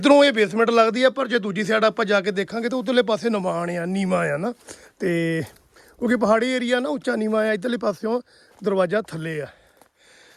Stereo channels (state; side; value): identical; both; correlation 1.00